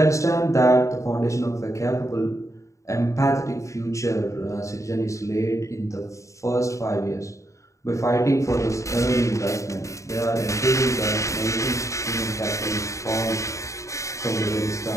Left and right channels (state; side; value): late; right; 0.15 ms